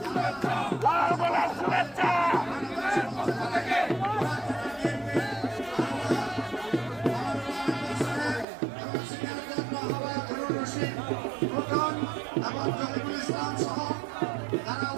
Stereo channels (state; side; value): drops out; left; at 8.5 s